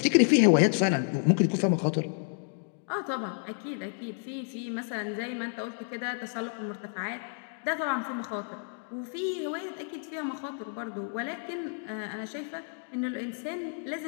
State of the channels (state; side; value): silent; right; 58 dB below the other